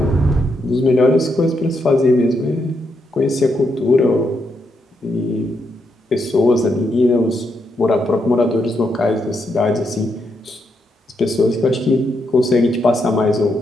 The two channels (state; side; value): normal; both; correlation 0.80